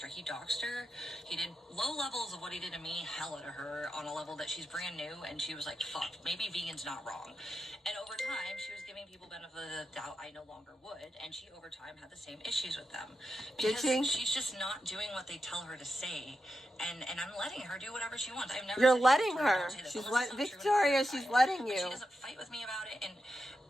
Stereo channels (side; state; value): both; normal; correlation 0.88